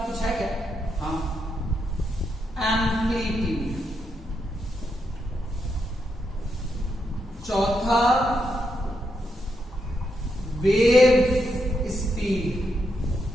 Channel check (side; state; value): both; normal; correlation 0.82